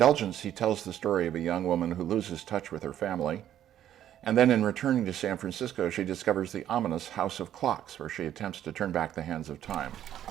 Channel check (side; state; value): left; quieter; 11.2 dB